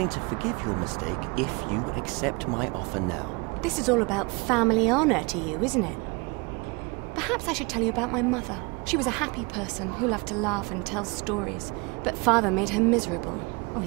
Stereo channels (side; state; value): left; quieter; 28.1 dB